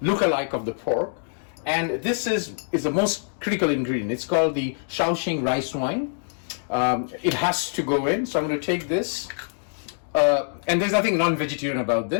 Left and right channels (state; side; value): silent; right; digital silence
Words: look-alike of the pork. And this is the most critical ingredient. It's called the Shao Xing Rice wine. It has to go in. So I'm going to take this. And there's nothing non-vegetarian about